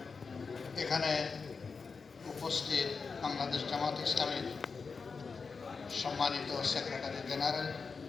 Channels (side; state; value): right; quieter; 4.9 dB